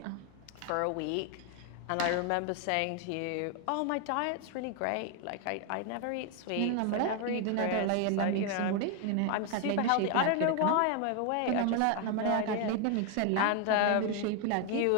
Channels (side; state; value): both; different; correlation 0.01